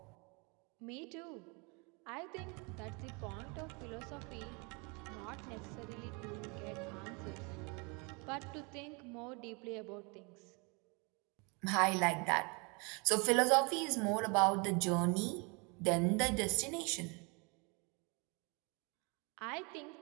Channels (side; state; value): left; quieter; 31.2 dB